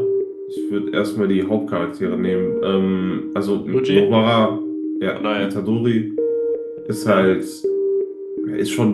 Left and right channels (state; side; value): identical; both; correlation 1.00